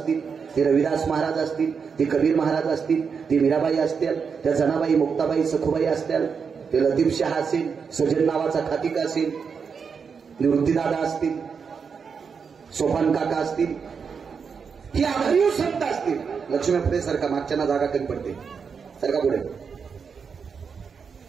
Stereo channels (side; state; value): left; quieter; 6.0 dB